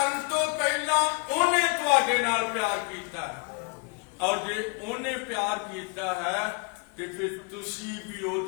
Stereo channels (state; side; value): quieter; right; 32.3 dB